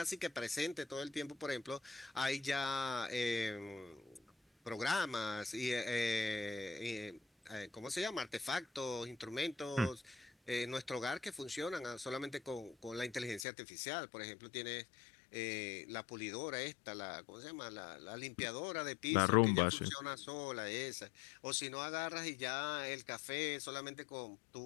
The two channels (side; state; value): right; drops out; at 13.5 s